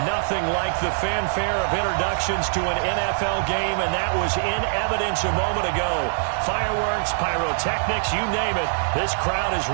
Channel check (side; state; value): left; silent; 62 dB below the other